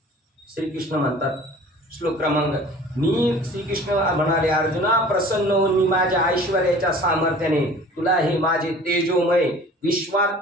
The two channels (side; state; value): both; normal; correlation 0.46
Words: श्रीकृष्ण म्हणतात श्लोक क्रमांक, मी श्रीकृष्ण म्हणाले अर्जुना प्रसन्न होऊन मी माझ्या ऐश्वर्याच्या सामर्थ्याने तुला हे माझे तेजोमय